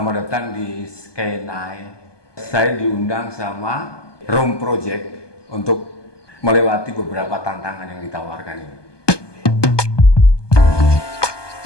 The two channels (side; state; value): right; late; 1.2 ms